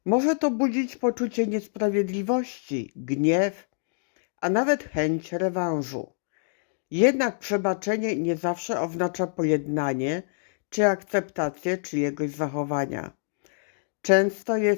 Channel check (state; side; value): silent; right; digital silence